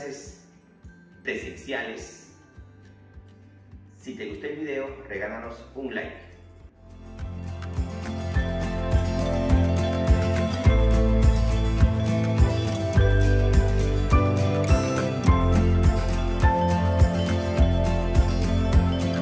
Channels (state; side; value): identical; both; correlation 1.00